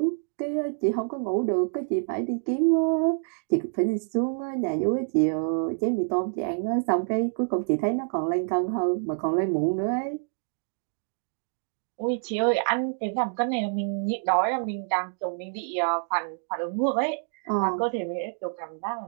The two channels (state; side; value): silent; left; digital silence